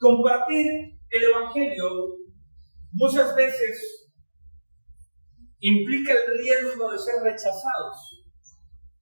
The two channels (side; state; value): both; inverted; correlation -1.00